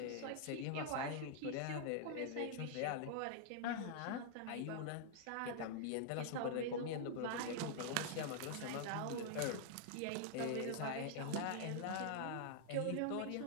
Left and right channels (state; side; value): different; both; correlation -0.01